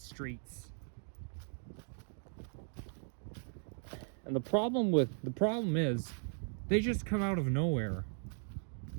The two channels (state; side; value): silent; left; 53 dB below the other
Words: streets. And the problem is they just come out of nowhere.